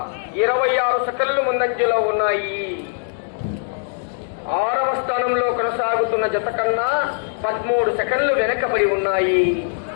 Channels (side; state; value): right; silent; digital silence